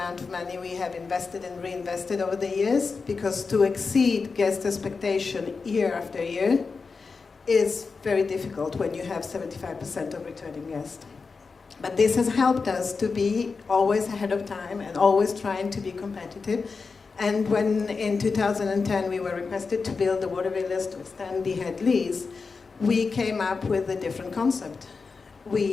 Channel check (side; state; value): right; quieter; 4.7 dB